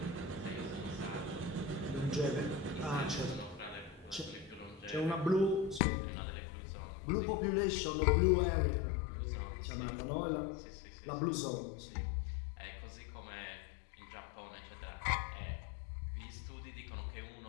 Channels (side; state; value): right; drops out; at 5.8 s